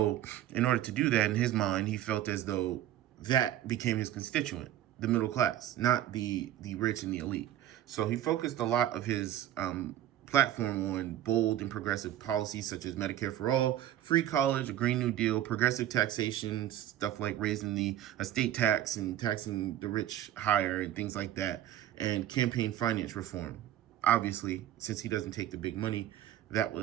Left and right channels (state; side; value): quieter; left; 12.4 dB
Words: in order to do that, in his mind, he felt as though that became his constituent, the middle class, not the rich and the elite. So he focused a lot of his platform on bold and progressive policies such as Medicare for all, free college, a Green New Deal, progressive taxation, stuff like raising the estate tax and taxing the rich higher and things like that, and campaign finance reform. Obviously, since he doesn't take the big money, that